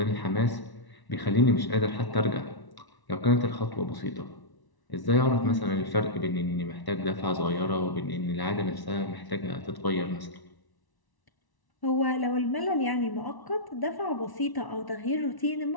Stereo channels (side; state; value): right; late; 1.0 ms